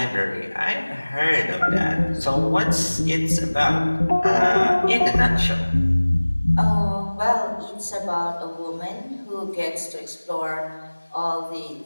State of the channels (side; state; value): both; inverted; correlation -1.00